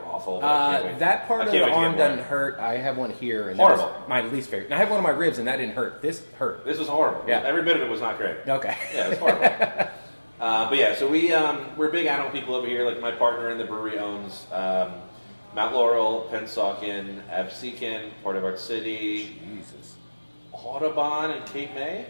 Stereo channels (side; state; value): both; inverted; correlation -1.00